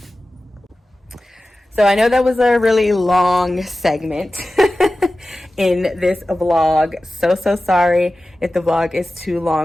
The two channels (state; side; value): normal; both; correlation 0.95